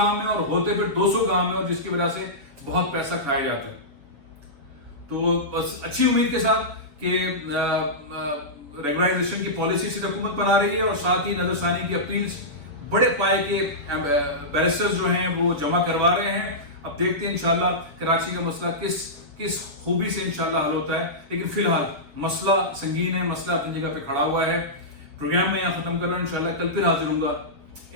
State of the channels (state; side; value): late; left; 7.0 ms